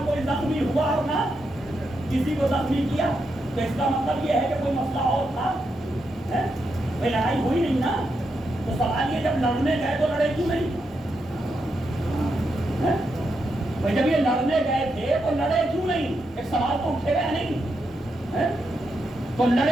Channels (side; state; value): both; normal; correlation 0.83